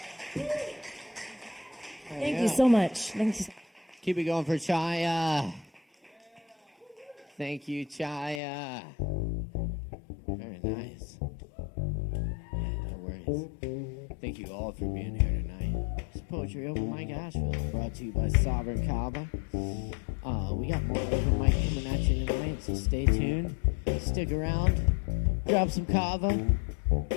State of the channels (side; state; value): right; drops out; at 8.4 s